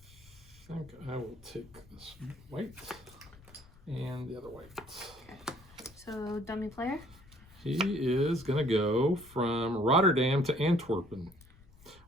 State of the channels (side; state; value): left; noise; rumble, 24 dB below the sound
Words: I think I will take this white and the other white. Okay. So dummy player. He is gonna go from Rotterdam to Antwerpen,